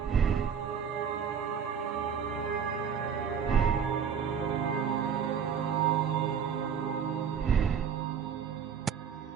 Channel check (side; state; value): left; quieter; 7.3 dB